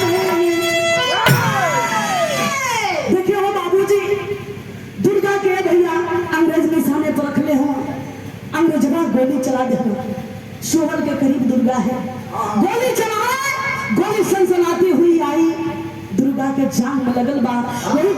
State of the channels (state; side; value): identical; both; correlation 1.00